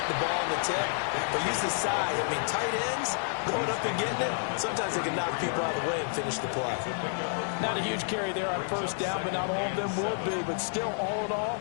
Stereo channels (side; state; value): right; silent; digital silence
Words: the ball on the tip, but use his size. I mean, tight ends, going up and getting it, sometimes they can knock people out of the way and finish the play. Not a huge carry there on first down, but not all of them will be. But still, all in all,